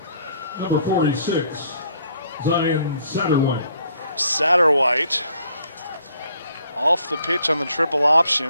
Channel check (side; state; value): both; inverted; correlation -0.64